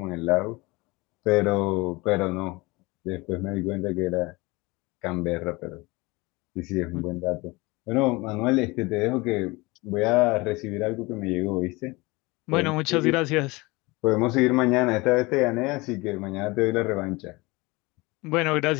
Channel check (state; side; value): quieter; right; 23.6 dB